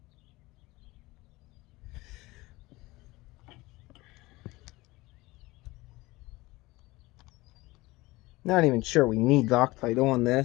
Not even sure we need Loctite on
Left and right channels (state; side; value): quieter; right; 20.7 dB